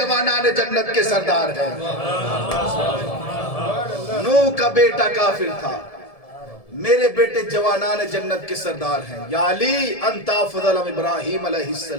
جنت کے سردار ہیں۔ نوح کا بیٹا کافر تھا، میرے بیٹے جوانان جنت کے سردار ہیں۔ یا علی انت افضل من ابراہیم علیہ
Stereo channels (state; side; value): late; right; 1.7 ms